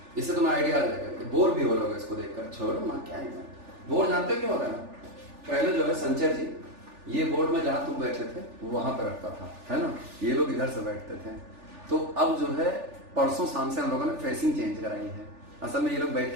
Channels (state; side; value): late; left; 3.4 ms